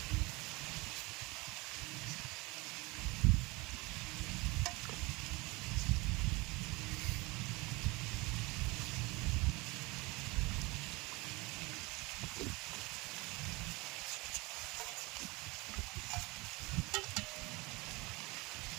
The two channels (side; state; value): left; quieter; 24.6 dB